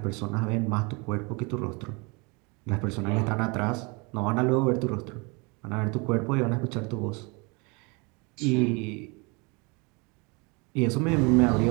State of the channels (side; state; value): left; quieter; 29.4 dB